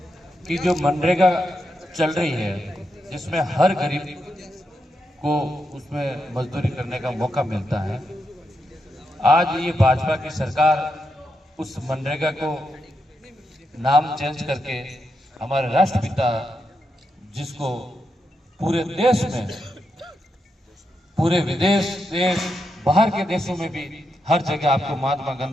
कि जो मनरेगा चल रही है जिसमें हर गरीब को उसमें मजदूरी करने का मौका मिलता है, आज ये भाजपा की सरकार उस मनरेगा को नाम चेंज करके हमारे राष्ट्रपिता, जिसको पूरे देश में, पूरे विदेश, देश, बाहर के देशों में भी हर जगह आपको महात्मा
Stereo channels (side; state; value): both; normal; correlation 0.84